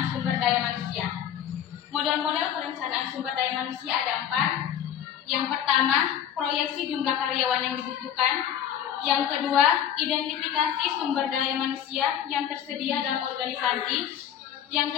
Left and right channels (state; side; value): quieter; right; 9.7 dB